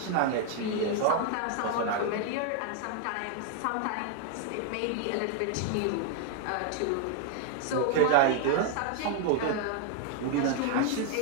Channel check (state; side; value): different; both; correlation 0.00